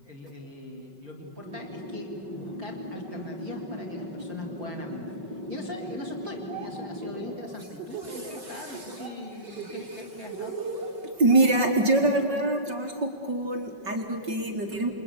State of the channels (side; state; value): left; late; 5.3 ms